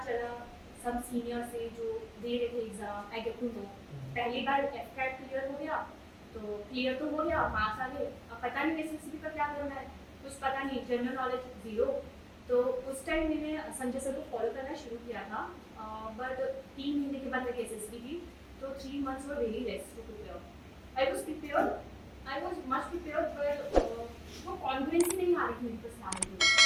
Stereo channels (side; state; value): both; identical; correlation 1.00